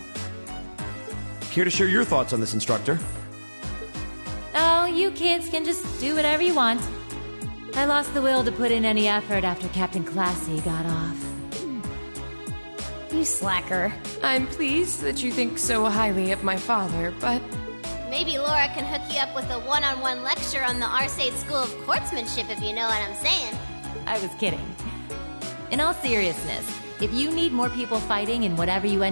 Here to share your thoughts on this, instructor. Oh, you kids can just do whatever you want. I lost the will to put in any effort after Captain Classy got off. You slacker. I'm pleased that you think so highly of my father, but... Maybe Laura can hook you up with a one-on-one lecture on the Arcade School of Courtsmanship, if you know what I'm saying. I was kidding. In all seriousness, if you need more people fighting in whatever you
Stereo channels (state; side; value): inverted; both; correlation -1.00